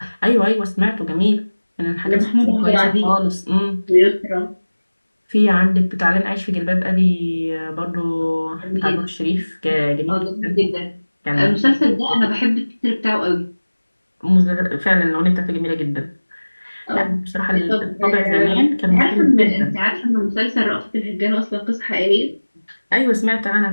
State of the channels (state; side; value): inverted; both; correlation -1.00